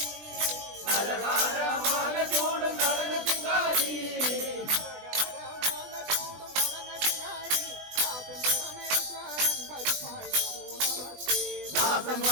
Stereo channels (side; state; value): left; late; 20 ms